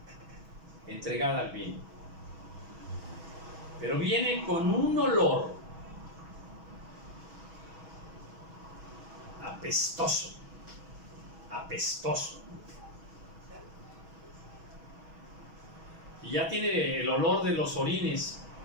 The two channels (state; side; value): late; left; 6.2 ms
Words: pero viene con un olor apestoso, y ya tiene el olor de los orines